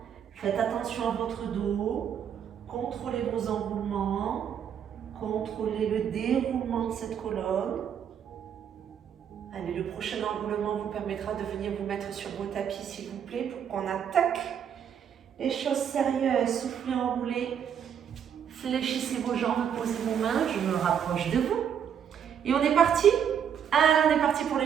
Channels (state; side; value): quieter; left; 8.4 dB